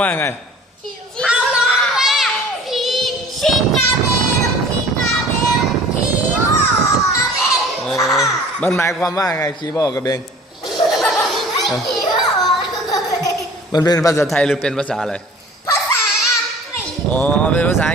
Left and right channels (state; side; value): normal; both; correlation 0.47